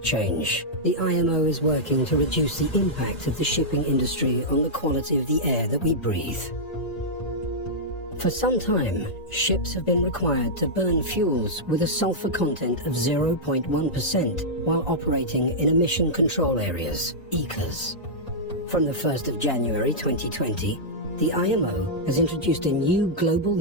change, the IMO is working to reduce the impact of the shipping industry on the quality of the air that we breathe. For some time, ships have been required to burn fuels with a sulfur content of 0.1% while operating in emission control areas, ECAs. From the 1st of January 2020, the IMO has introduced a new global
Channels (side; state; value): right; late; 1.9 ms